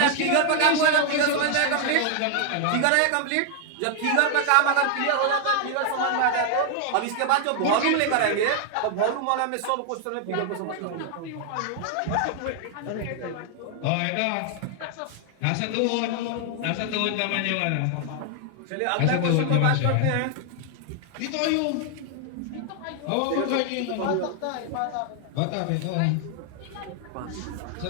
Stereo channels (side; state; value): both; different; correlation 0.00